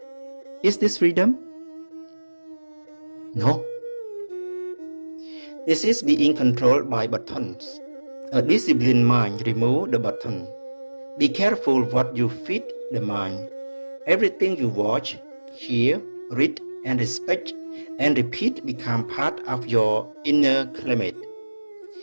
Is this freedom? No. This is being controlled by buttons. A disciplined mind removes the button. Be careful what you feed the mind. Everything you watch, hear, read, and respect and repeat become part of your inner climate.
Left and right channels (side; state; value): both; inverted; correlation -1.00